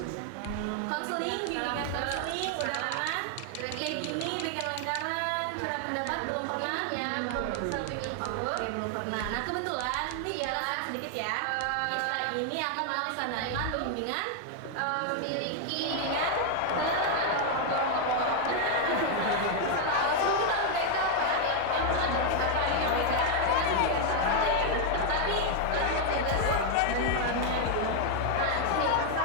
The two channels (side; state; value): both; different; correlation 0.00